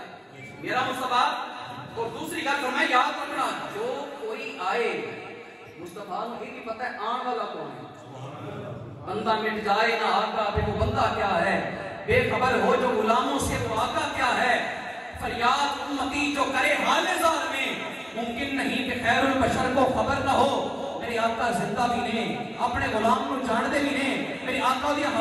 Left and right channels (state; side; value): identical; both; correlation 1.00